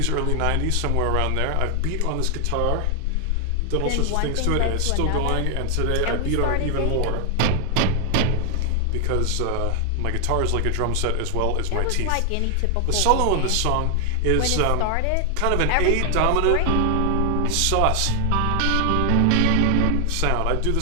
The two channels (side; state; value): both; different; correlation 0.00